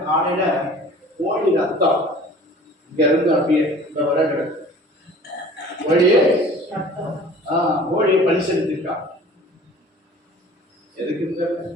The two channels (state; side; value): normal; both; correlation 0.46